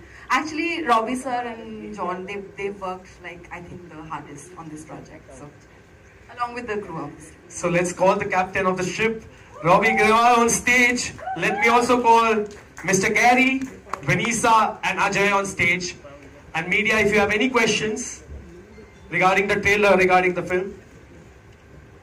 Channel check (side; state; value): both; identical; correlation 1.00